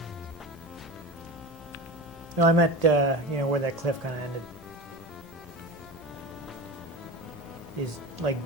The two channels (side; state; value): both; normal; correlation 0.29